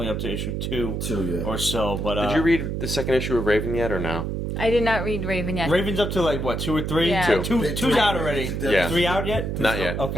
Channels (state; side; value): noise; right; hum, 3 dB below the sound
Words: up to issue 2 or so. But did you read the second issue of Raven yet or no? I did not read Raven yet. Raven's up to 2 or 3? Yeah. Two's out already. Yeah. 3 out yet? Not yet.